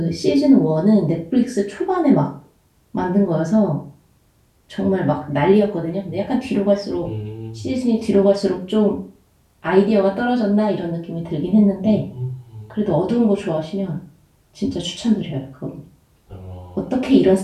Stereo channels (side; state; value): both; identical; correlation 1.00